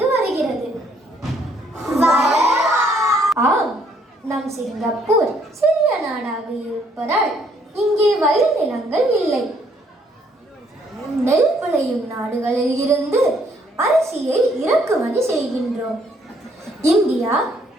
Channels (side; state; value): both; normal; correlation 0.67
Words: வருகிறது. ஆம், நம் சிங்கப்பூர் சிறிய நாடாக இருப்பதால் இங்கே வயல் நிலங்கள் இல்லை. நெல் விளையும் நாடுகளில் இருந்து அரிசியை இறக்குமதி செய்கின்றோம். இந்தியா,